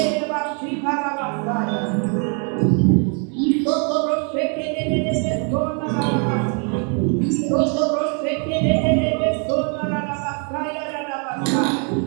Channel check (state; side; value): quieter; left; 39.4 dB